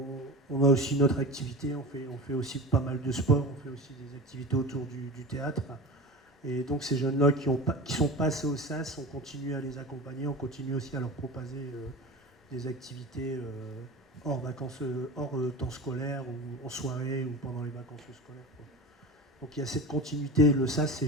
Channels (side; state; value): both; normal; correlation 0.30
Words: a aussi notre activité, on fait aussi pas mal de sport, on fait aussi des activités autour du théâtre. Et donc ces jeunes-là qui sont passés au SAS, on continue à les accompagner, on continue aussi à leur proposer des activités hors temps scolaire, ou en soirée, ou pendant les vacances scolaires, quoi. Donc il y a cette continuité. Le SAS, c'est